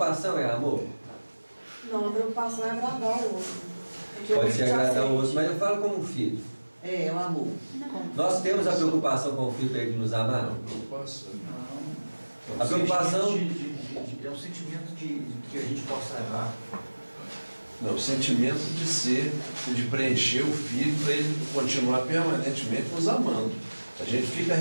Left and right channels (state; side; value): inverted; both; correlation -1.00